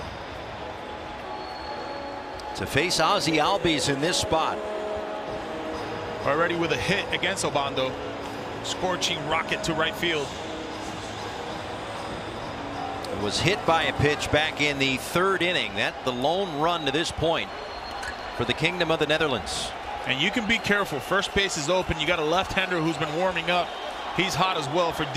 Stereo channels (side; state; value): both; identical; correlation 1.00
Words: To face Ozzy Albies in this spot. Already with a hit against Obando. Scorching rocket to right field. It was hit by a pitch back in the 3rd inning. That's the lone run to this point for the Kingdom of the Netherlands. And you can be careful. First base is open. You got a left-hander who's been warming up. He's hot as well for